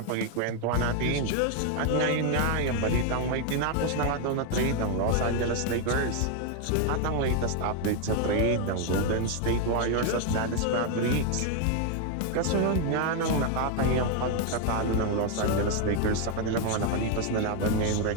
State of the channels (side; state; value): both; different; correlation 0.01